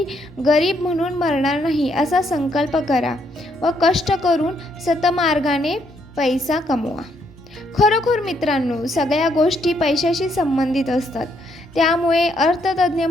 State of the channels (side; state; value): both; normal; correlation 0.73